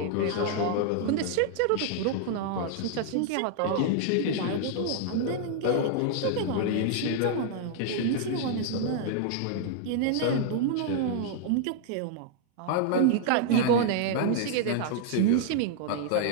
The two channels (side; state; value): both; different; correlation 0.00